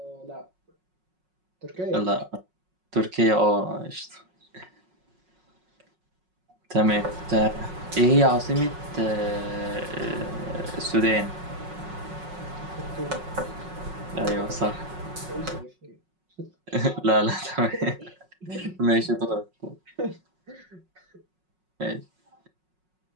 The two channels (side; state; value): left; late; 5.5 ms